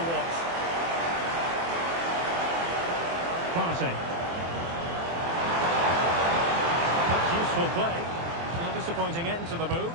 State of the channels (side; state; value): left; late; 24 ms